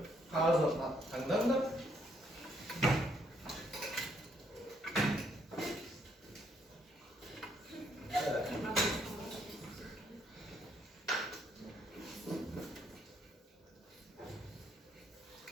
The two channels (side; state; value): both; normal; correlation 0.71